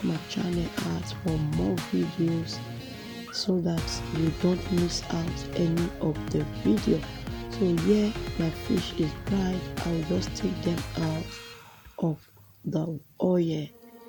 my channel out for more videos so that you don't miss out any of the video. So yeah, my fish is dried. I will just take them out of the oil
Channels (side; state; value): both; identical; correlation 1.00